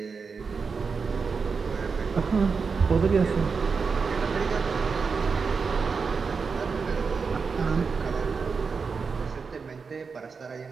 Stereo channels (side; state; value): left; quieter; 5.2 dB